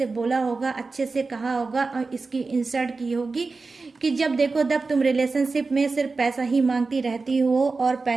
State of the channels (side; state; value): left; quieter; 4.0 dB